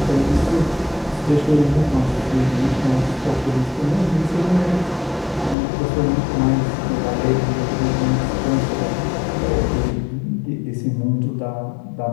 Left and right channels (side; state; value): right; drops out; at 5.6 s